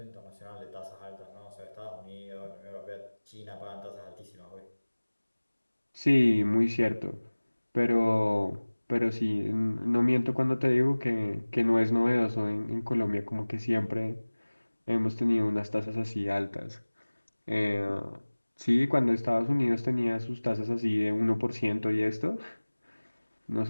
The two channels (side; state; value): both; inverted; correlation -1.00